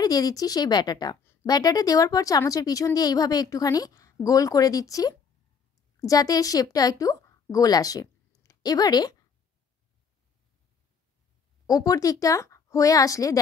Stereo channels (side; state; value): right; quieter; 6.0 dB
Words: দিয়ে দিচ্ছি সেই ব্যাটারটা দেওয়ার পর চামচের পিছন দিয়ে এইভাবে একটুখানি গোল করে দিচ্ছি, যাতে এর শেপটা একটু গোল আসে। এবারে ওপর দিকটা হয়ে আসলে